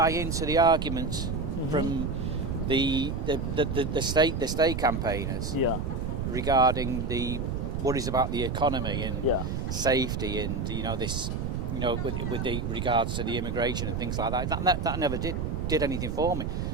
into the arguments from the state campaigners Yeah. regarding the worries about the economy and Yeah. safety, and with the regards to the immigration and things like that. That never did anything for me.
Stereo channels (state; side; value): noise; right; rumble, 2 dB below the sound